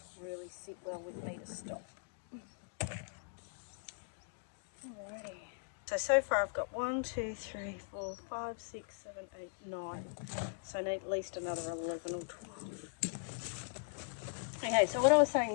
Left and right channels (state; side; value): silent; right; digital silence